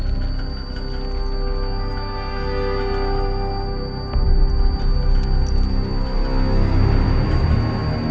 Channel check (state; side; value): identical; both; correlation 1.00